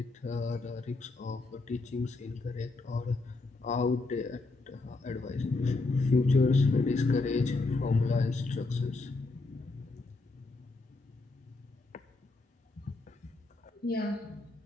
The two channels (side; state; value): right; quieter; 3.4 dB